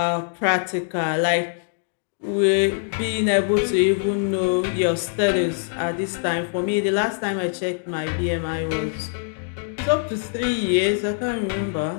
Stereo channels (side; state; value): right; silent; digital silence